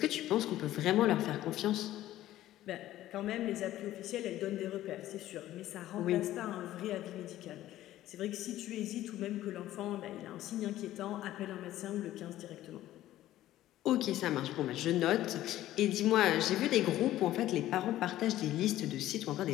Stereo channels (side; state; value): right; quieter; 14.1 dB